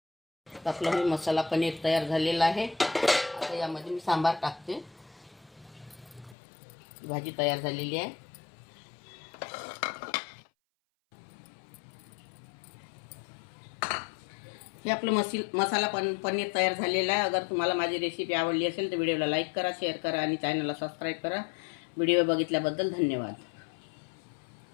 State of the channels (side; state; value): right; drops out; at 6.4 s